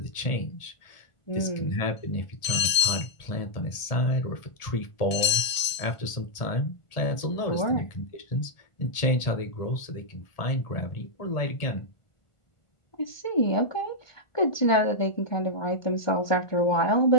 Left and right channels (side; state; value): right; late; 1.5 ms